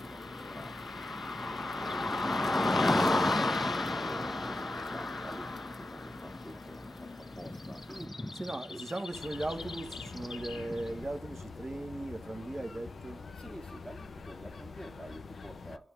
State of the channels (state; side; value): normal; both; correlation 0.90